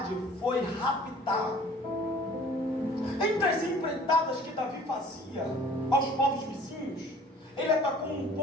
foi raptado. Entre as empreitadas que Davi fazia aos povos vizinhos, ele atacou um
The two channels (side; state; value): both; normal; correlation 0.51